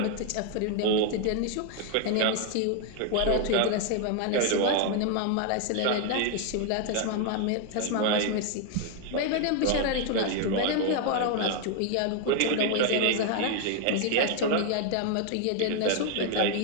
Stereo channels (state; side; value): different; both; correlation 0.00